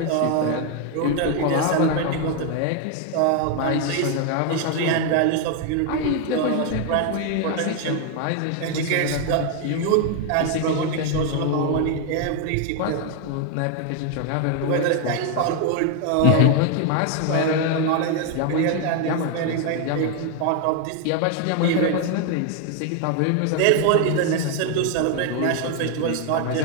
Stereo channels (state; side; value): different; both; correlation 0.01